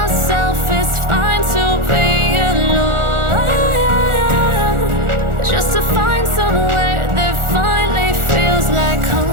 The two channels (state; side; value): late; left; 1.4 ms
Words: it's fine to be alone, just to find somewhere that finally feels like